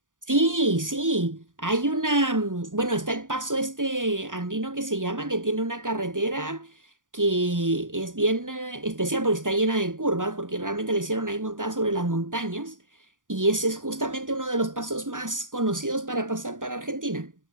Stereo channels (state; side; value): late; left; 0.88 ms